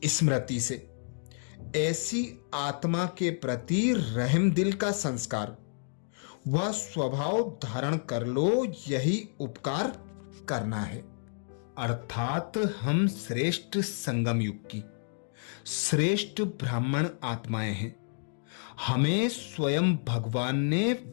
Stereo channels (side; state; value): right; silent; digital silence